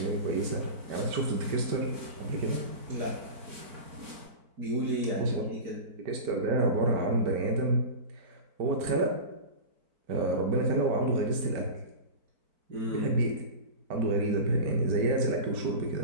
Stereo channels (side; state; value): left; late; 4.5 ms